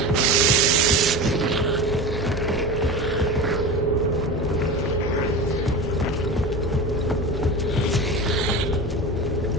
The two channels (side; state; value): both; normal; correlation 0.28